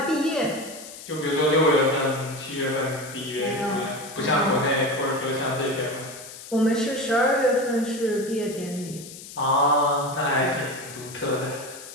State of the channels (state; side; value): noise; left; hiss, 14 dB below the sound